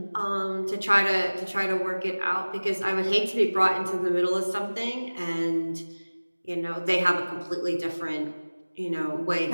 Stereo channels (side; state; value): both; inverted; correlation -1.00